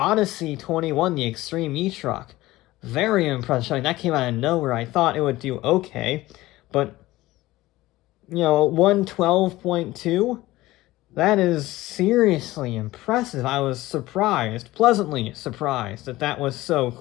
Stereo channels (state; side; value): quieter; right; 17.8 dB